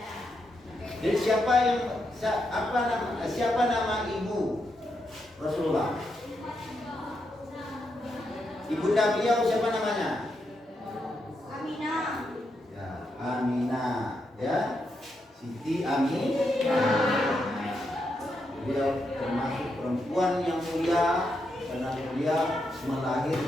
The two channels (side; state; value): both; normal; correlation 0.83